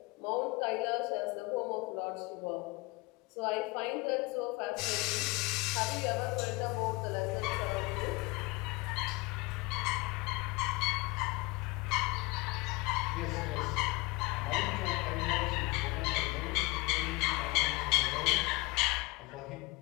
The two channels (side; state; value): right; quieter; 23.7 dB